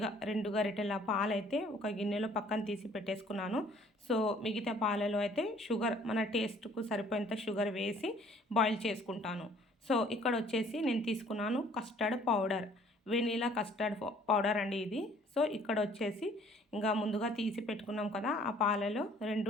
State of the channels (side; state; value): both; normal; correlation 0.57